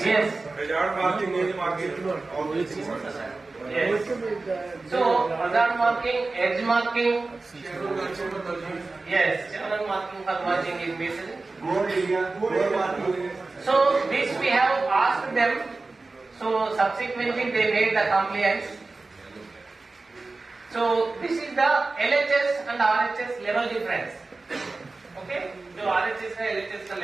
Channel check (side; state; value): left; quieter; 3.5 dB